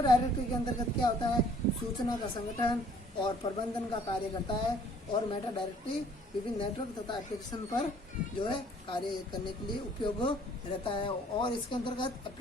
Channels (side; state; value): both; normal; correlation 0.58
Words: डायरेक्टरी के अंतर्गत क्या होता है, सूचना का संगठन और प्रबंधन का कार्य करता है और मेटा डायरेक्टरी विभिन्न नेटवर्क तथा एप्लीकेशन पर जो है कार्य करने के लिए उपयोग रहता है। और इसके अंतर्गत